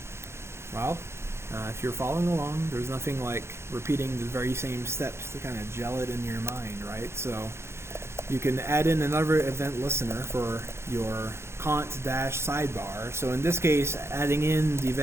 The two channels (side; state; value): left; late; 0.13 ms